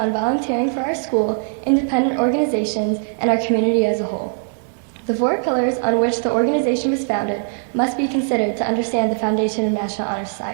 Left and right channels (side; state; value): left; silent; digital silence